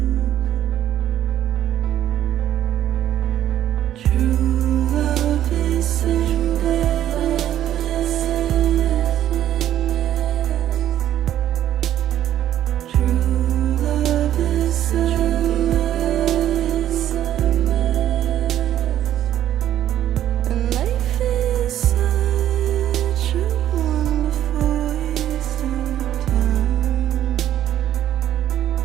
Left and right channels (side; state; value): left; quieter; 11.7 dB